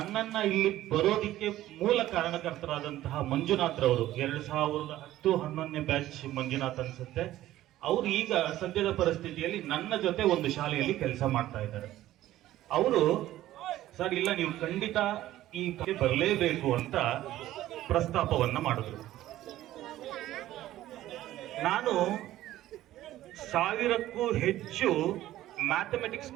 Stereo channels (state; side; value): quieter; left; 14.4 dB